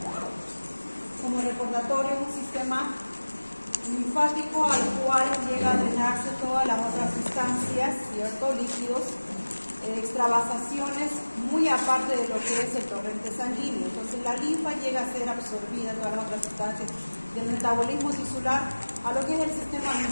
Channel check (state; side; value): inverted; both; correlation -1.00